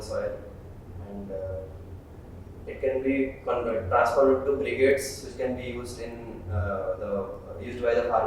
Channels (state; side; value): identical; both; correlation 1.00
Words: soil, and it can be transferred to brigades, which can be used used by the